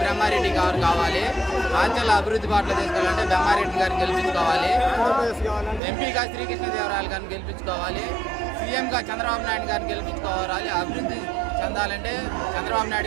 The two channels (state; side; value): drops out; left; at 5.8 s